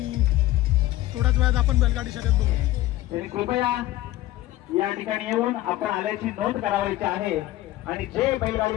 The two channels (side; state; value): right; quieter; 15.8 dB